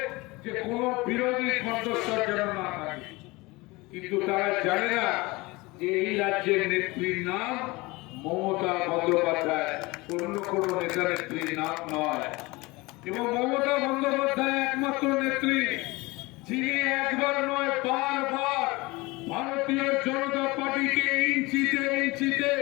যে কোন বিরোধী কণ্ঠস্বর যেন না থাকে। কিন্তু তারা জানে না যে এই রাজ্যের নেত্রীর নাম মমতা বন্দ্যোপাধ্যায়, অন্য কোন নেতা নেত্রীর নাম নয়। এবং মমতা বন্দ্যোপাধ্যায় একমাত্র নেত্রী যিনি একবার নয় বারবার ভারতীয় জনতা পার্টিকে ইঞ্চিতে ইঞ্চিতে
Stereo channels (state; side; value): quieter; right; 22.9 dB